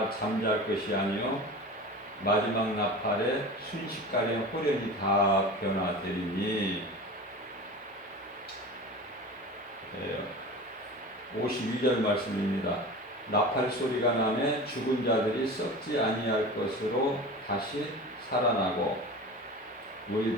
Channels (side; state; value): both; normal; correlation 0.33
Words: 잠잘 것이 아니요 마지막 나팔에 순식간에 호련히 다 변화되리니. 52절 말씀입니다. 나팔 소리가 나매 죽은 자들이 썩지 아니할 것으로 다시 살아나고